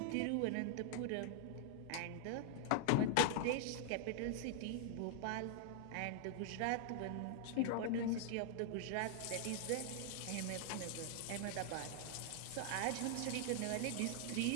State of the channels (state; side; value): different; both; correlation -0.01